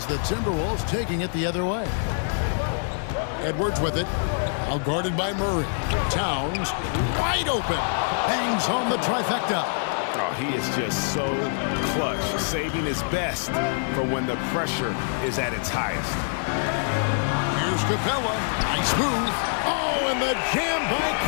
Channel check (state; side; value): silent; right; digital silence